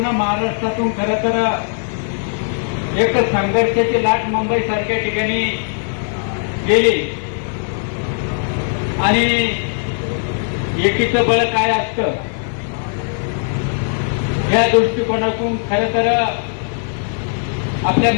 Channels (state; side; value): silent; right; 59 dB below the other